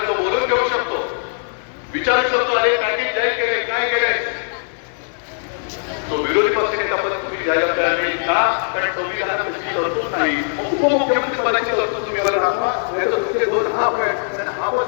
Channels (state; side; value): silent; right; digital silence